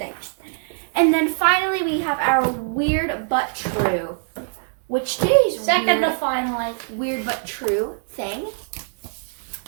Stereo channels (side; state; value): left; silent; digital silence